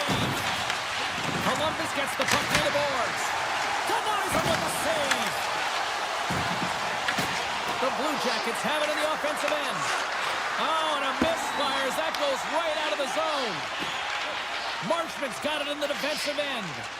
Columbus gets the puck near the boards. Denies him with a save. The Blue Jackets have it in the offensive end. Oh, and a misfire as that goes right out of the zone. Marchment's got it in the defensive end.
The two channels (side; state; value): right; noise; hum, 28 dB below the sound